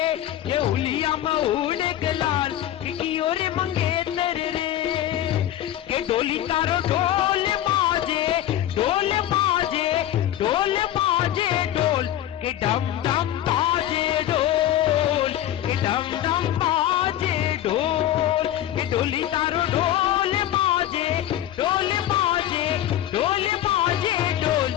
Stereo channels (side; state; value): right; quieter; 12.3 dB